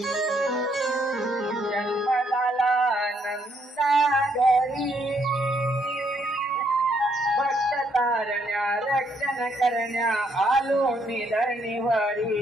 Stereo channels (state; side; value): normal; both; correlation 0.72